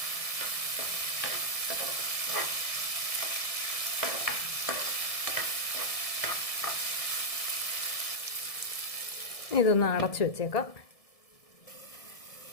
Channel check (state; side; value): late; right; 1.7 ms